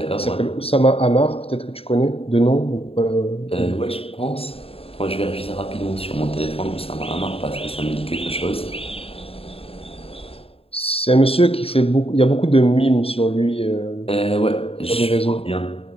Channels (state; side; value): late; right; 0.28 ms